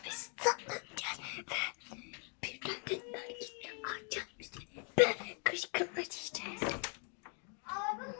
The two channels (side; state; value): right; quieter; 37.8 dB